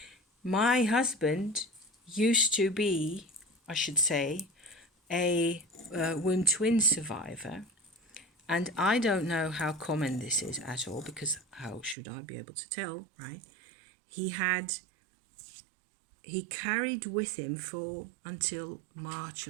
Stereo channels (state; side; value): drops out; left; at 12.0 s